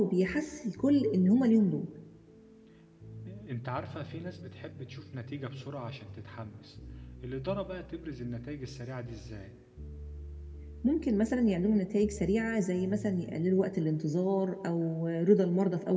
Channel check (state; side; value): identical; both; correlation 1.00